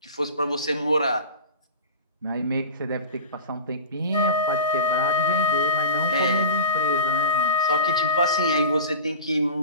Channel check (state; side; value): inverted; both; correlation -0.34